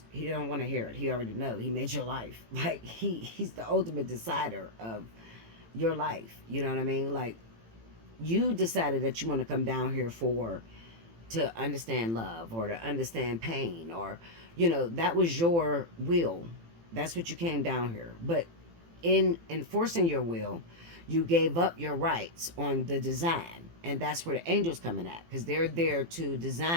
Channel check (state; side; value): late; left; 18 ms